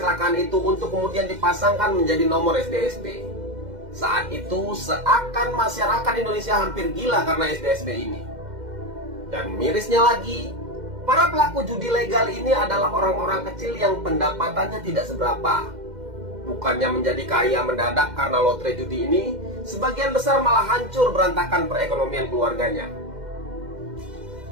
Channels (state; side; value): late; left; 2.1 ms